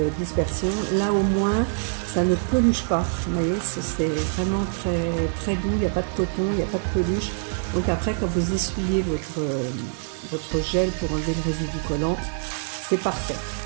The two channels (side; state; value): left; silent; digital silence